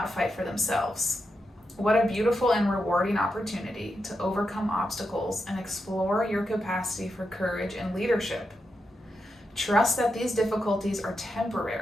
fight for themselves. What a beautiful and rewarding opportunity to overcome obstacles and explore your capacity for courage and leadership. Trust that these difficulties are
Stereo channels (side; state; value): both; normal; correlation 0.86